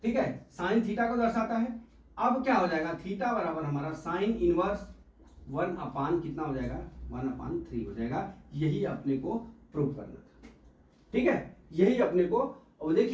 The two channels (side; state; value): both; identical; correlation 1.00